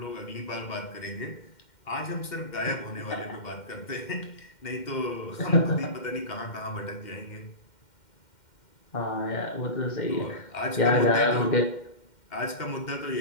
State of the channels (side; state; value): right; late; 2.1 ms